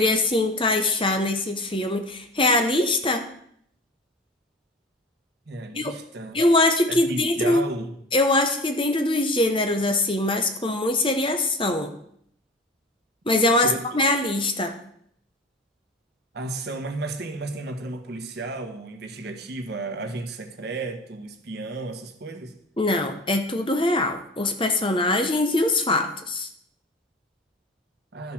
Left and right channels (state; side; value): normal; both; correlation 0.36